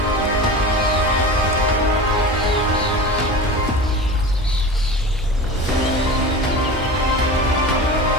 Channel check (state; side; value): normal; both; correlation 0.32